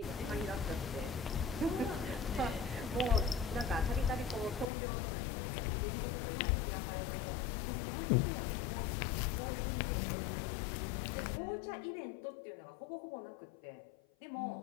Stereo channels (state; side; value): drops out; right; at 4.7 s